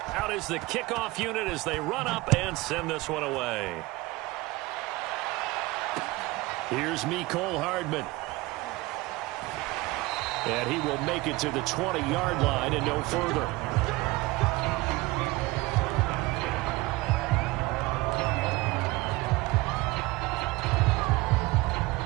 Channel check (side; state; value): left; quieter; 21.1 dB